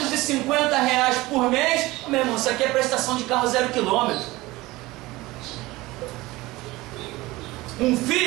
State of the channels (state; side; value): quieter; left; 19.8 dB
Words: por mês. Meu irmão, isso aqui é prestação de carro 0 km. Um